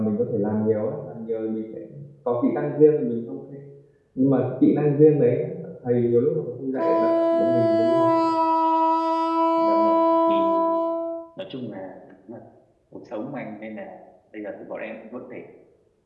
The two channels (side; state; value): both; identical; correlation 1.00